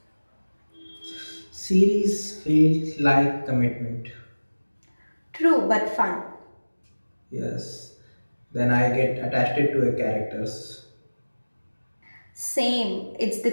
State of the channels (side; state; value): both; inverted; correlation -1.00